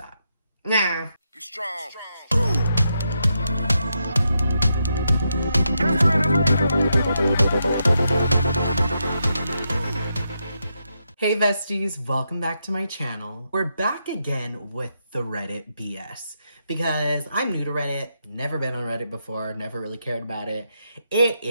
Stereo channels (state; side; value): inverted; both; correlation -0.82